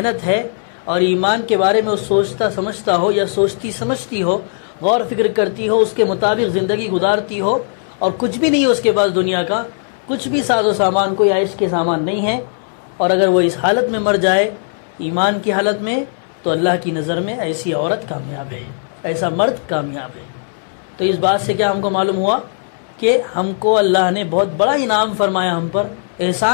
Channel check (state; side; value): silent; right; 63 dB below the other